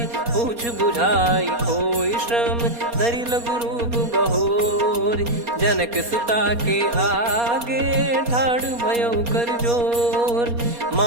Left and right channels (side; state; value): left; late; 4.2 ms